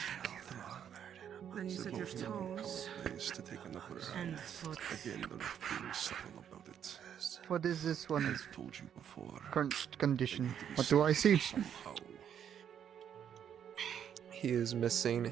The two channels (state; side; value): quieter; left; 8.9 dB